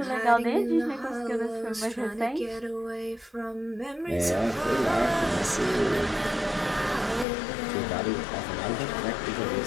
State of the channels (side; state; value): right; drops out; at 7.2 s